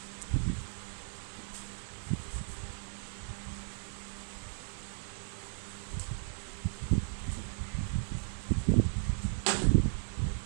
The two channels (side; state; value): left; silent; digital silence